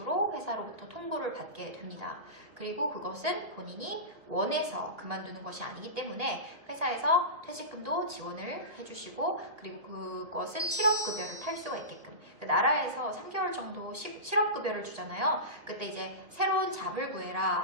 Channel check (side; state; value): left; late; 1.9 ms